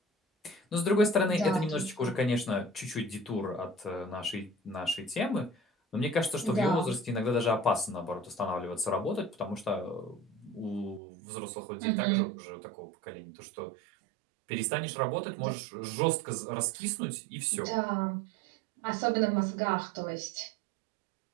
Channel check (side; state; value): left; drops out; at 11.0 s